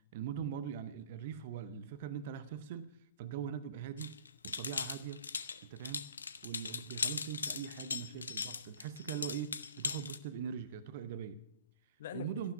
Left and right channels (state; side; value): inverted; both; correlation -0.48